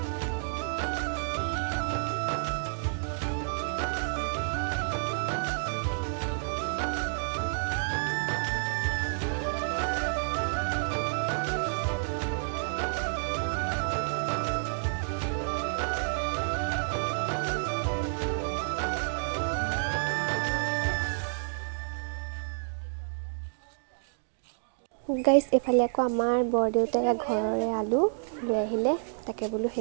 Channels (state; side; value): silent; left; digital silence